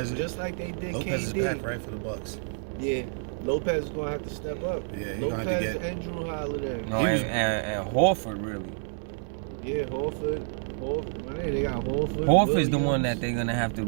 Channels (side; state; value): left; silent; 59 dB below the other